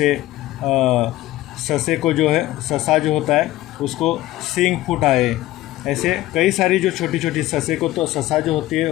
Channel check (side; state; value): right; quieter; 16.1 dB